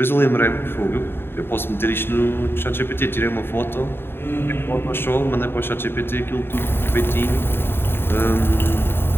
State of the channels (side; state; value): right; late; 0.11 ms